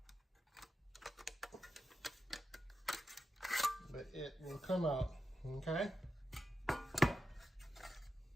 But it will come out. Okay,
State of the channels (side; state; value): both; normal; correlation 0.89